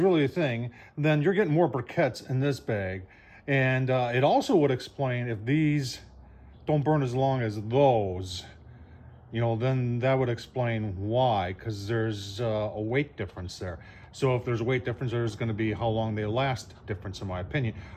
thing, then you're getting more briquettes in this bag. And it also would explain if these don't burn as long as those. you know, then that would explain why, because there's a weight difference there. So if there's a weight difference, there's going to be how long they last difference, in my opinion.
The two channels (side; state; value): both; identical; correlation 1.00